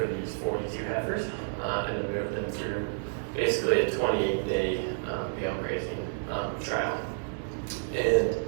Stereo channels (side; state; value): left; silent; 58 dB below the other